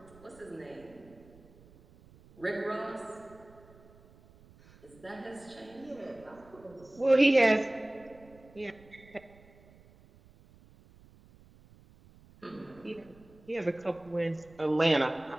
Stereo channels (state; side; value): noise; right; rumble, 25 dB below the sound